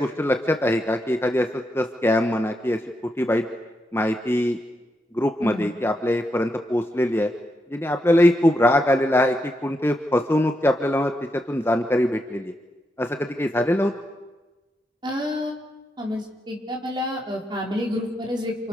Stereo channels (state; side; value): normal; both; correlation 0.83